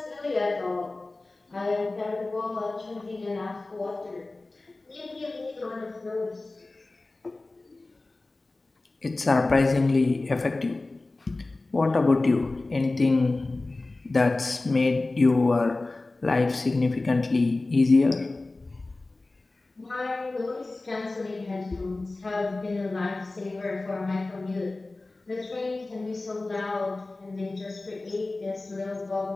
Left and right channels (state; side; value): quieter; right; 3.1 dB